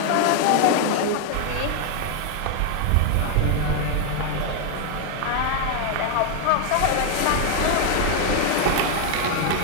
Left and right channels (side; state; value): both; different; correlation 0.00